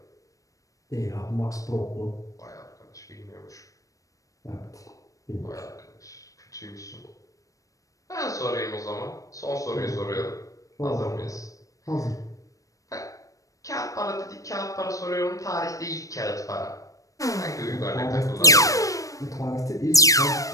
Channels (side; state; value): right; late; 0.16 ms